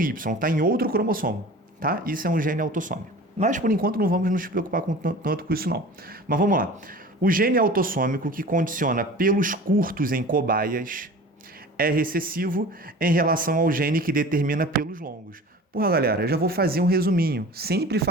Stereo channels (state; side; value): normal; both; correlation 0.40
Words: está em outro cromossomo, tá? Isso é um gene autossômico. Mas, por enquanto, não vamos nos preocupar tanto com isso, não. Mas vamos lá. O gene autossômico que condiciona pelos curtos em cobaias é recessivo em relação ao gene que determina pelos longos. Porra, galera, eu já vou fazer um resuminho. Sempre